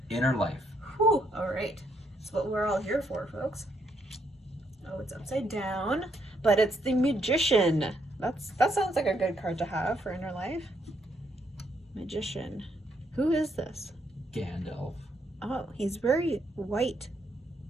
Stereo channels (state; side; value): normal; both; correlation 0.74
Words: Inner Life. Whew, all right. That's what we're all here for, folks. Oh, it's upside down, but it's the Magician. That sounds like a good card to have for Inner Life. Magician. Who is this? Gandalf. Oh, he's very white.